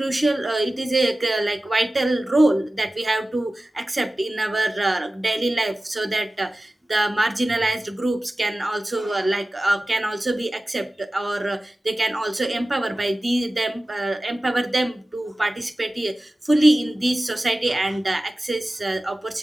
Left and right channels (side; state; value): both; normal; correlation 0.96